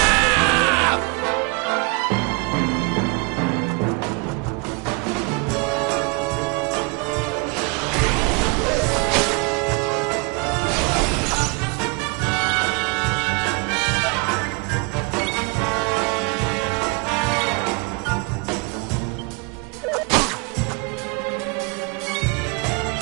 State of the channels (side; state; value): left; quieter; 29.9 dB